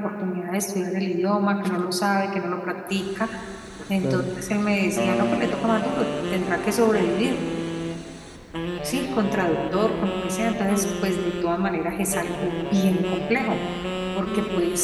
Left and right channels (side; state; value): both; identical; correlation 1.00